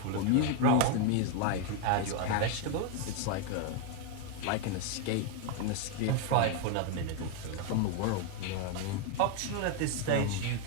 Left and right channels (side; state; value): both; different; correlation 0.01